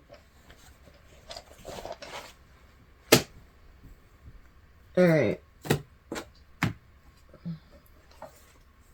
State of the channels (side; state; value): both; identical; correlation 1.00